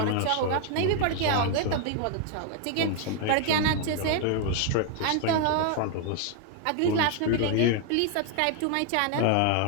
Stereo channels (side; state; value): both; different; correlation 0.00